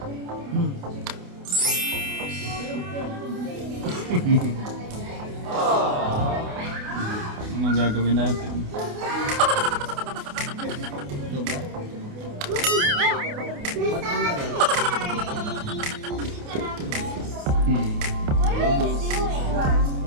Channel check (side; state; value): left; late; 28 ms